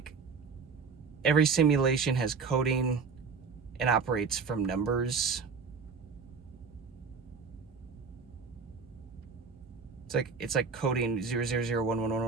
every simulation has coding and operates from numbers. It's like coding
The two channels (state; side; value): quieter; left; 5.2 dB